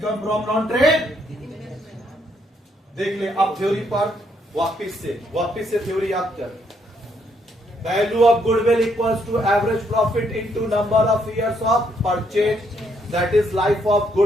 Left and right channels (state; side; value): normal; both; correlation 0.73